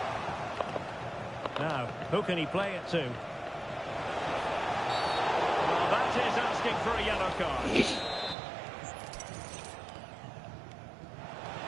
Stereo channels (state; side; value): drops out; left; at 8.3 s